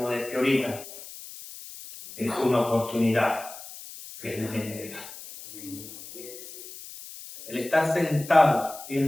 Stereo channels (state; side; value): noise; left; hiss, 14 dB below the sound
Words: decía ahorita, es una oportunidad que Dios genera. El estar sentado y el